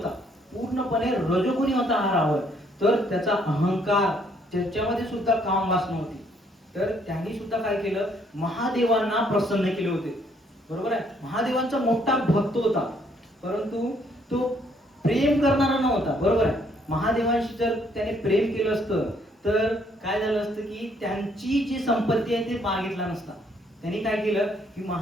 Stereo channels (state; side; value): normal; both; correlation 0.67